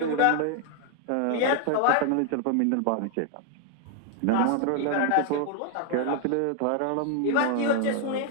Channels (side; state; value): both; different; correlation 0.00